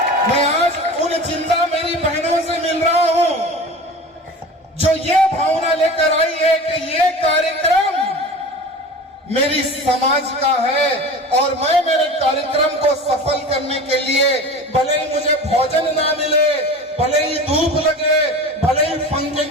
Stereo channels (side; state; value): both; normal; correlation 0.35